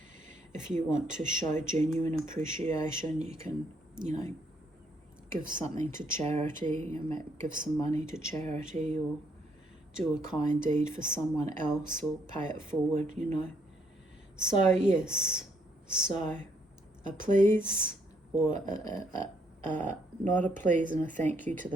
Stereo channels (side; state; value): both; normal; correlation 0.71